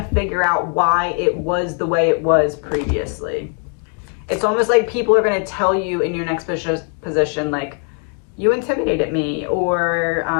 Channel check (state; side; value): quieter; right; 39.3 dB